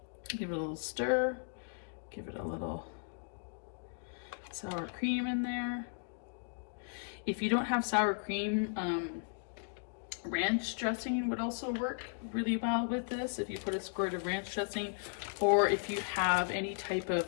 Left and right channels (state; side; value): silent; right; digital silence